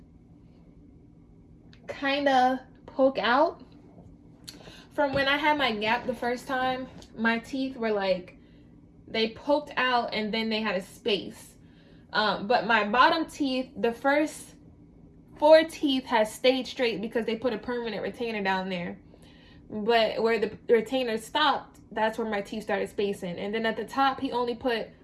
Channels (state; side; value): identical; both; correlation 1.00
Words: kind of poke out. From when I had my gap the first time, my teeth were like, they poked out and then they had a space. But my bottom teeth, the first 4 teeth has stayed straight because they put a permanent retainer down there. But where the retainer stopped, that's where my teeth started spacing. And then at the top, he only put